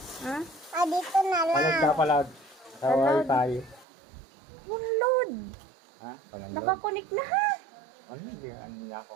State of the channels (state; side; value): drops out; left; at 3.9 s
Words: Ha? Dito na lang. Palag ka palag. Sa wifi. Download. Ha? Palag. Nakakonik na ha. Ano? Hindi ano niya ako.